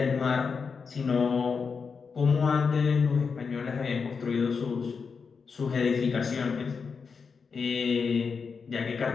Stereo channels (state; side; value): quieter; right; 5.5 dB